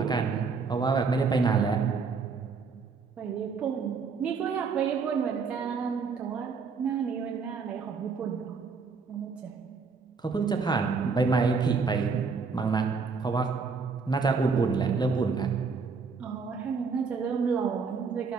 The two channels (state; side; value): quieter; left; 5.0 dB